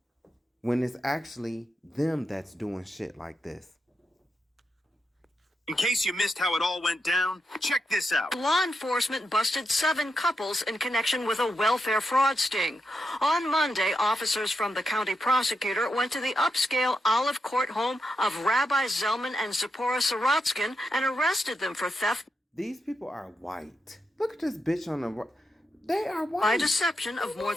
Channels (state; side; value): normal; both; correlation 0.85